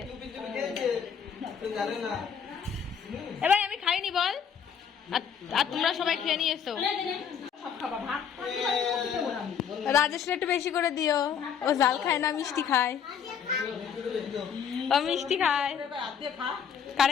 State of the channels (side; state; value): right; quieter; 7.5 dB